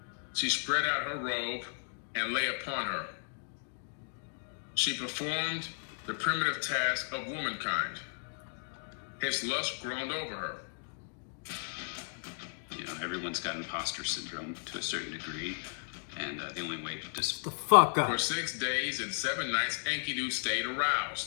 She spread out her robe and lay upon her. She performed the primitive task of womankind. His lust groaned over her. Everyone's got imposter syndrome to a certain degree, and the only way to just the fuck up. For 6 days and 7 nights, Enkidu stayed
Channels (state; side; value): silent; right; digital silence